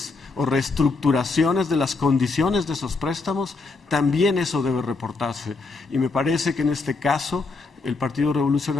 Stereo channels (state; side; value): quieter; right; 3.9 dB